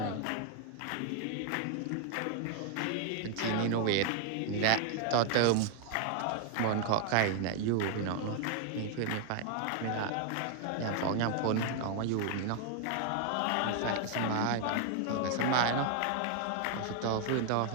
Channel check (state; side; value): different; both; correlation 0.00